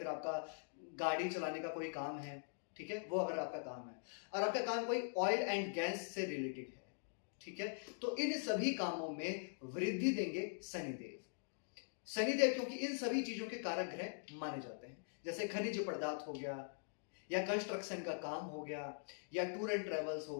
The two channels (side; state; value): right; silent; digital silence